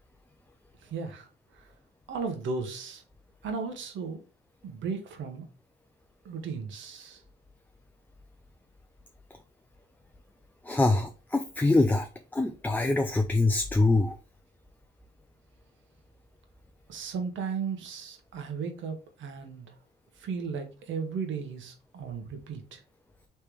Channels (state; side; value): normal; both; correlation 0.77